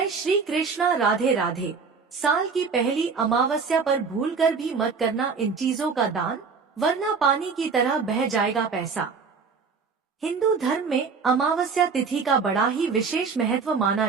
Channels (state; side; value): quieter; left; 5.2 dB